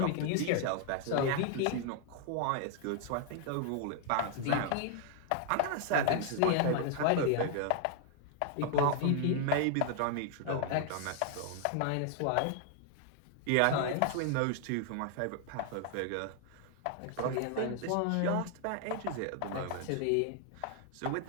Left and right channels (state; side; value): different; both; correlation 0.00